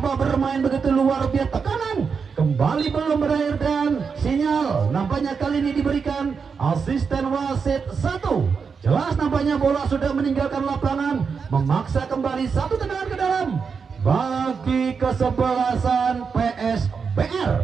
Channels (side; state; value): left; quieter; 5.7 dB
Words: bermain begitu luar biasa, tekanan kembali belum berakhir dan sinyal nampaknya kali ini diberikan asisten wasit 1. Jelas nampaknya bola sudah meninggalkan lapangan, memaksa kembali satu tendangan ke dalam bagi kesebelasan PSBR.